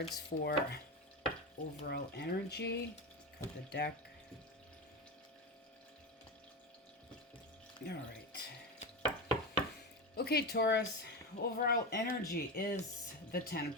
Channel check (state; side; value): normal; both; correlation 0.19